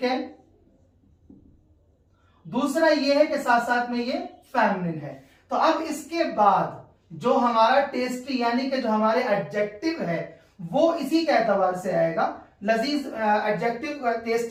है। दूसरा ये है कि साथ साथ में ये फेमिनिन है। तो अब इसके बाद जो हमारा टेस्टी यानी कि जो हमारे एडजेक्टिव है वो इसी के एतबार से आएगा। लजीज एडजेक्टिव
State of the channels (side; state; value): both; identical; correlation 1.00